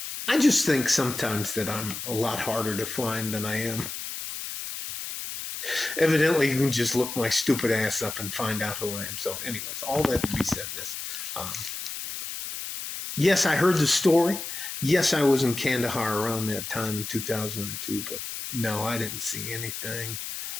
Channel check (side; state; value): left; noise; hiss, 7 dB below the sound